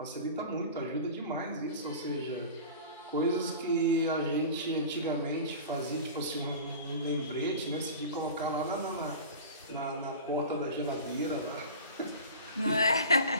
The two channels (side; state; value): both; inverted; correlation -0.35